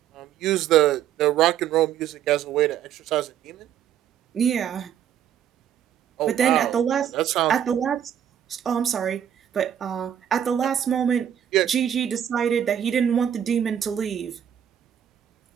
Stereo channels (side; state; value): left; quieter; 9.7 dB